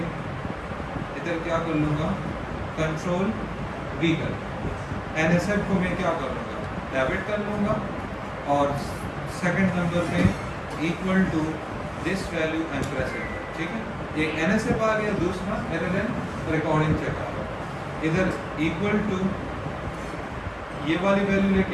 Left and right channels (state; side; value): identical; both; correlation 1.00